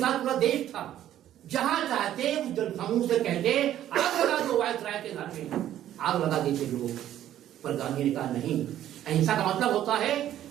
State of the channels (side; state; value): left; quieter; 11.9 dB